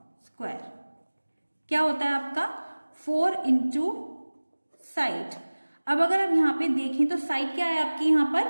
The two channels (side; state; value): both; inverted; correlation -1.00